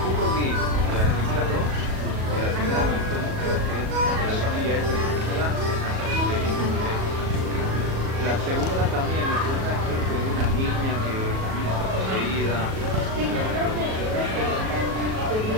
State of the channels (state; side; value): late; left; 37 ms